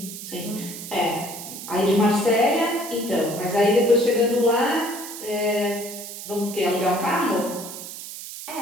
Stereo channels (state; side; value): noise; right; hiss, 11 dB below the sound